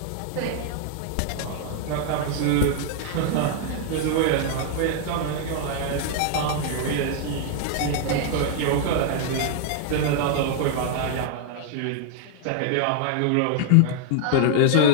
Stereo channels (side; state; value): both; different; correlation 0.00